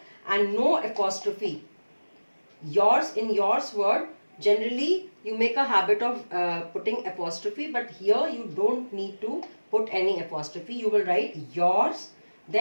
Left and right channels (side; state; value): both; inverted; correlation -1.00